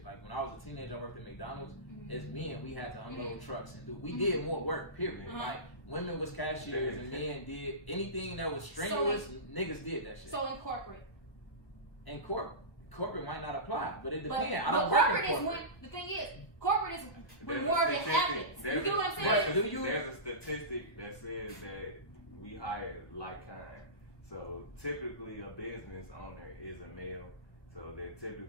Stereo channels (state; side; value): late; right; 1.2 ms